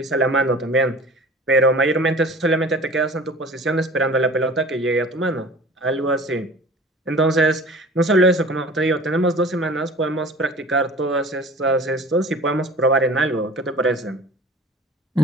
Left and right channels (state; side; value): normal; both; correlation 0.43